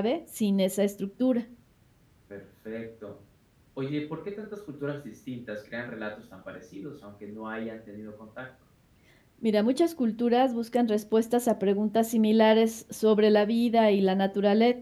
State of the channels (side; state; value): both; identical; correlation 1.00